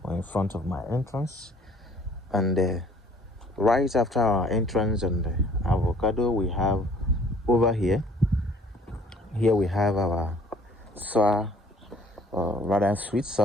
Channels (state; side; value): normal; both; correlation 0.56